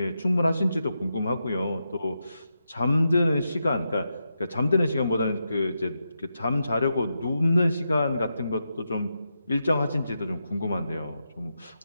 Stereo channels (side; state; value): both; inverted; correlation -0.86